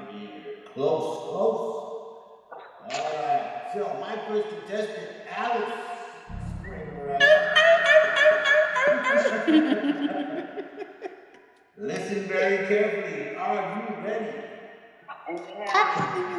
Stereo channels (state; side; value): identical; both; correlation 1.00